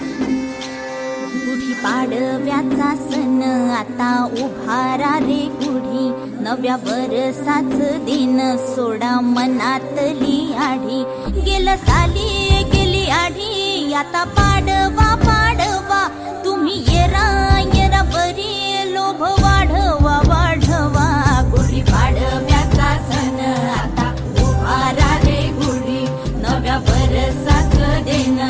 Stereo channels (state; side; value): identical; both; correlation 1.00